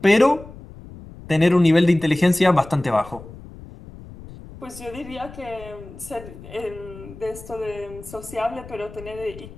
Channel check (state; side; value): noise; left; rumble, 17 dB below the sound